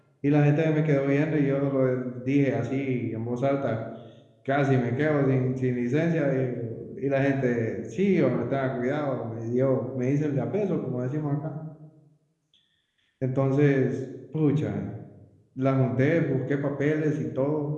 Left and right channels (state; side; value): identical; both; correlation 1.00